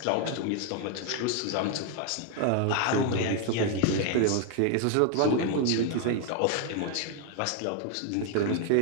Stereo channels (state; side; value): different; both; correlation 0.01